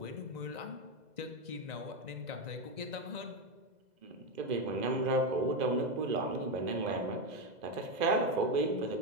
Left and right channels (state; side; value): late; left; 2.0 ms